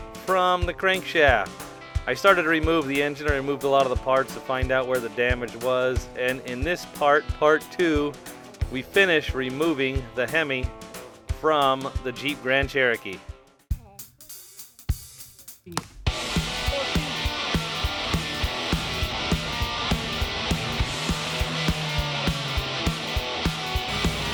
from the crankshaft. I started to remove the engine. I removed a lot of the parts to find out where the damage was, and in this part 2, we finish removing the HEMI from the Jeep Grand Cherokee.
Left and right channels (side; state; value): both; identical; correlation 1.00